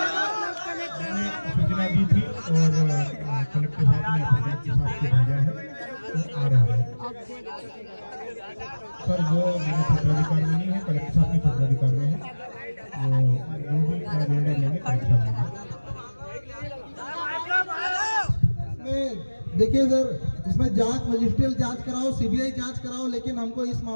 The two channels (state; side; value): inverted; both; correlation -1.00